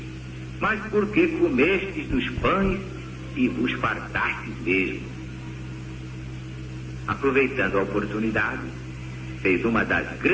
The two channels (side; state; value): both; identical; correlation 1.00